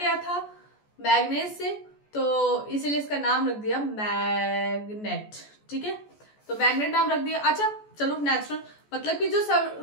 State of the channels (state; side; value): late; right; 14 ms